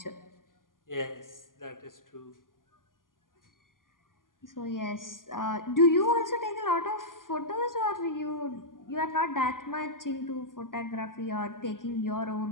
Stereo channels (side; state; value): right; late; 0.90 ms